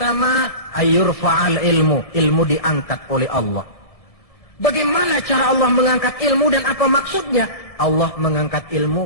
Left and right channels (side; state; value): right; late; 1.7 ms